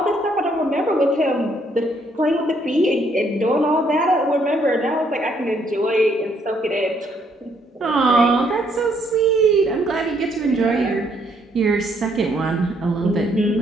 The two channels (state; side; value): normal; both; correlation 0.70